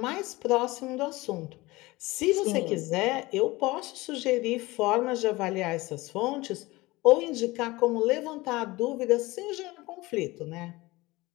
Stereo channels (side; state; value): right; quieter; 20.8 dB